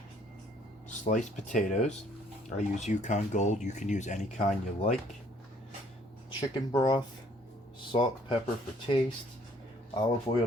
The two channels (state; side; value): normal; both; correlation 0.62